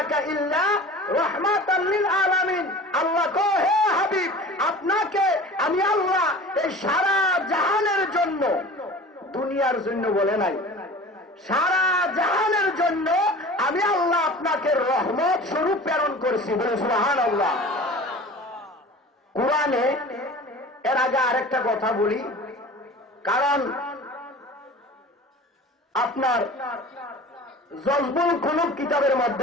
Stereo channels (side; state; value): both; normal; correlation 0.39